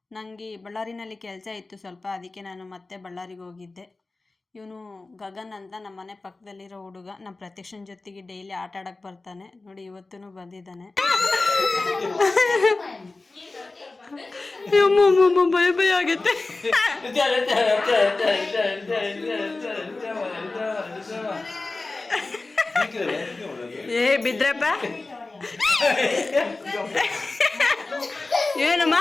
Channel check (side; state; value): right; quieter; 3.4 dB